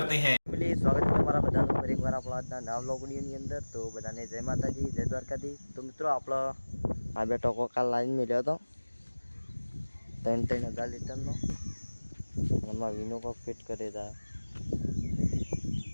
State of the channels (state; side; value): inverted; both; correlation -1.00